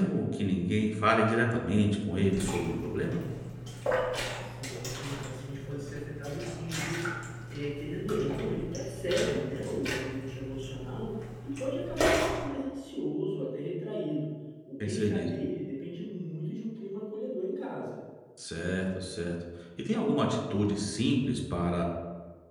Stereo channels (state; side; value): identical; both; correlation 1.00